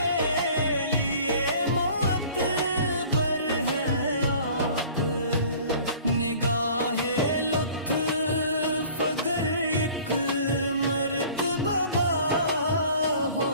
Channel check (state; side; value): inverted; both; correlation -0.48